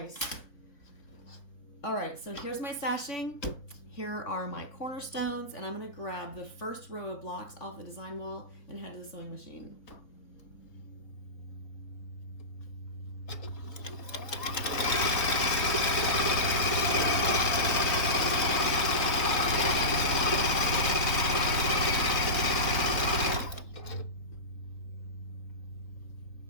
All right, so here's my sashing. Here are my cornerstones, and I'm going to grab the first row of blocks off the design wall and head to the sewing machine.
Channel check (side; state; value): right; late; 3.7 ms